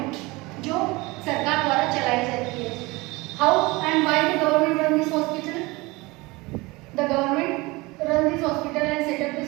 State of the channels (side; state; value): left; quieter; 23.1 dB